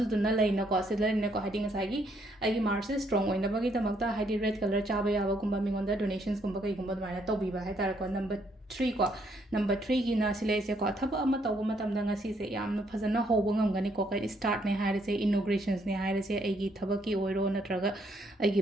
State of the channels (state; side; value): normal; both; correlation 0.71